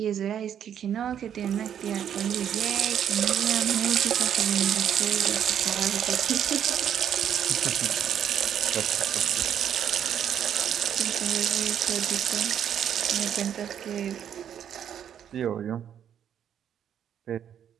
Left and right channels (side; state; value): left; quieter; 9.2 dB